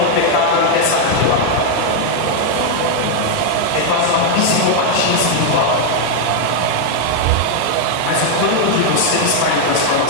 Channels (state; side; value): different; both; correlation 0.00